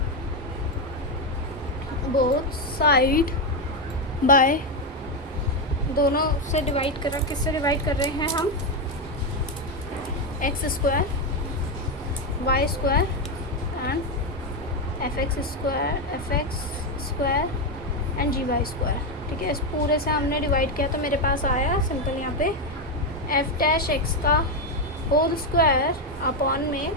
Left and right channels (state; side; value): normal; both; correlation 0.08